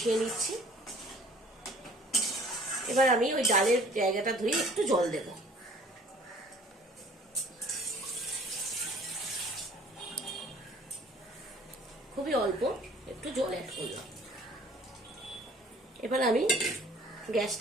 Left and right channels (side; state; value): both; normal; correlation 0.53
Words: নিচ্ছি। এবার আমি ওই ডালের জায়গাটা ধুয়ে একটু জল দেব। খুবই অল্প একটু জল অ্যাড করলাম। এবার আমি